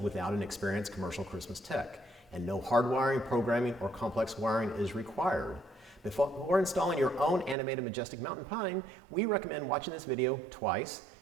without an experienced commercial Christmas tech, and no hardwiring, programming, or complex wiring is required. Before installing your own animated majestic mountain pine, we recommend watching this video twice,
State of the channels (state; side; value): drops out; left; at 7.6 s